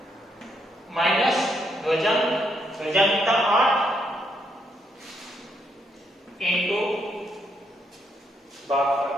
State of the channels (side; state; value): both; normal; correlation 0.76